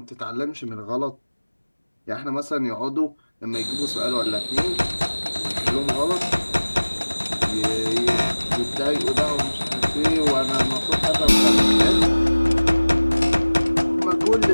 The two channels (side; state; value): both; inverted; correlation -1.00